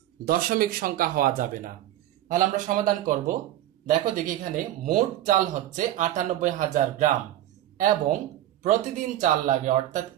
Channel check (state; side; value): quieter; left; 13.4 dB